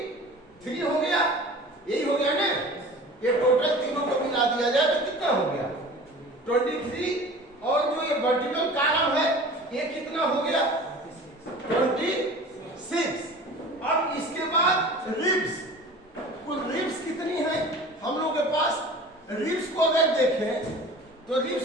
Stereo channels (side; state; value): both; normal; correlation 0.40